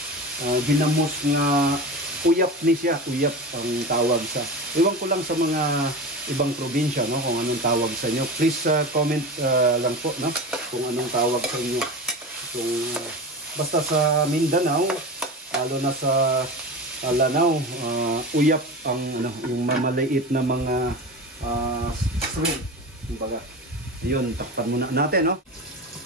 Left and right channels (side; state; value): both; normal; correlation 0.28